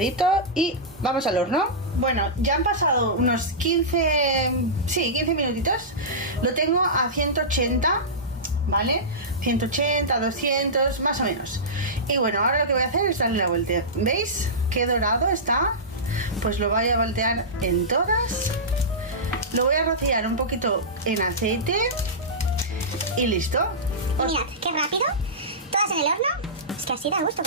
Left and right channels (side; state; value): both; normal; correlation -0.16